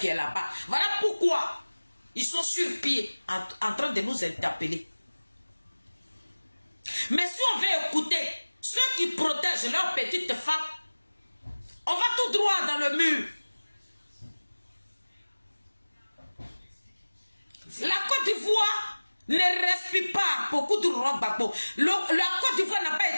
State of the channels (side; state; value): both; inverted; correlation -1.00